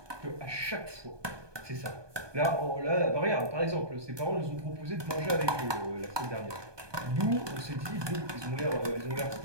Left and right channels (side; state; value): left; late; 1.2 ms